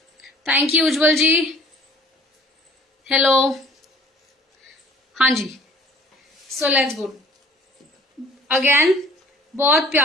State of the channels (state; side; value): normal; both; correlation 0.51